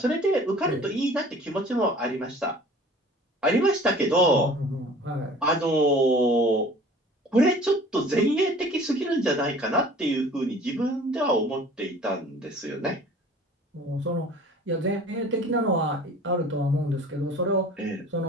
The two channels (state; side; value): normal; both; correlation 0.47